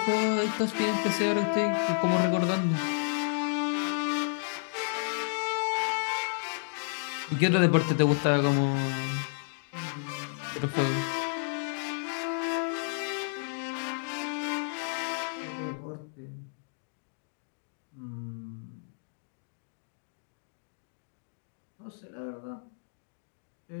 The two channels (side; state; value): right; silent; digital silence